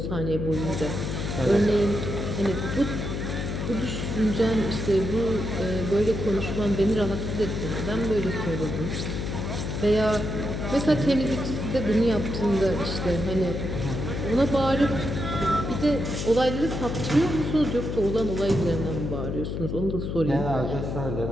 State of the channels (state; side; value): noise; left; hum, 3 dB below the sound